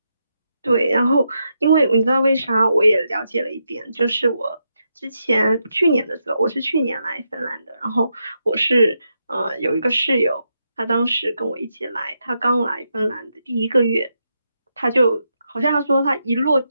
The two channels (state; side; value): inverted; both; correlation -0.83